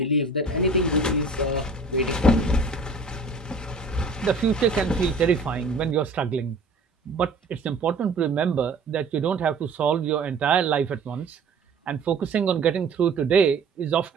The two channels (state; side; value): quieter; left; 3.6 dB